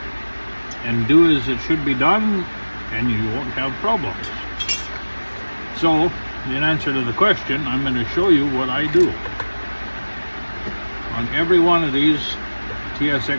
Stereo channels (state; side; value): inverted; both; correlation -1.00